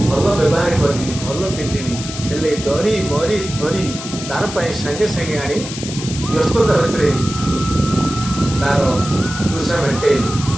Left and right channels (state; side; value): noise; left; hiss, 9 dB below the sound